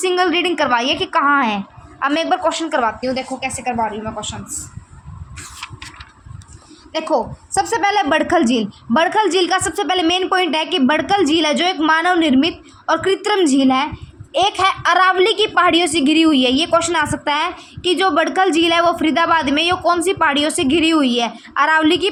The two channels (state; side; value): identical; both; correlation 1.00